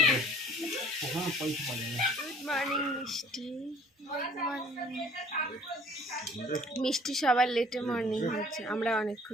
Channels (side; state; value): both; normal; correlation 0.53